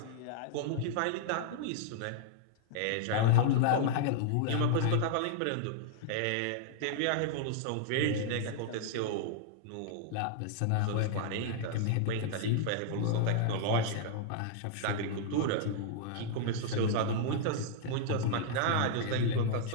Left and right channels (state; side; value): different; both; correlation -0.01